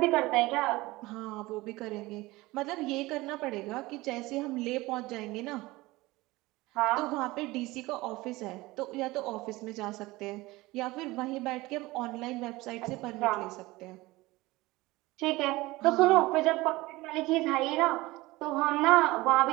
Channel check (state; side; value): quieter; left; 20.3 dB